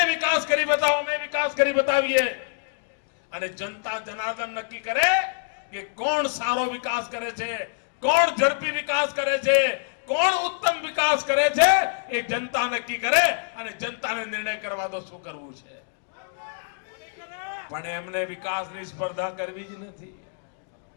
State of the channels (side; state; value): right; silent; digital silence